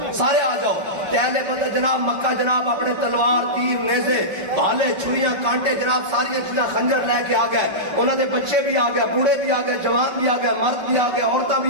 سارے آ جاؤ۔ اہل بدر جناب مکہ جناب اپنے تلوار تیر نیزے بھالے چھریاں کانٹے جناب ساری چیزاں خنجر لے کے آ گئے، انہوں نے بچے بھی آ گئے، بوڑھے بھی آ گئے، جوان بھی آ گئے، مرد بھی آ گئے، عورتیں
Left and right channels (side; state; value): left; late; 5.3 ms